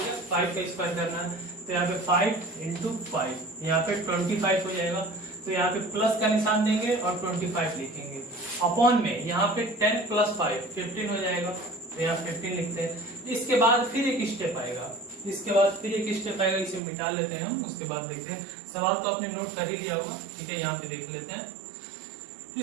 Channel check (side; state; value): left; drops out; at 16.8 s